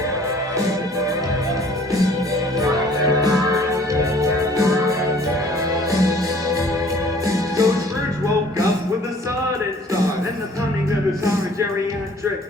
So Scrooge woke up with a sudden start and the pounding of his heart,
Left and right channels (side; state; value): both; normal; correlation 0.54